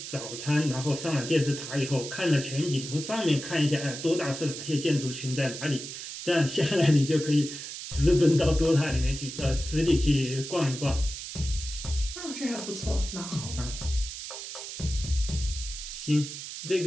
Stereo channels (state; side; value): noise; right; hiss, 9 dB below the sound